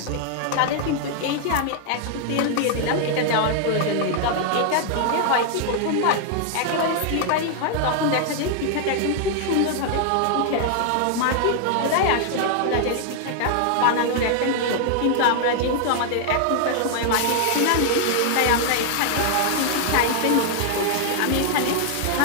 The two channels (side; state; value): both; different; correlation 0.00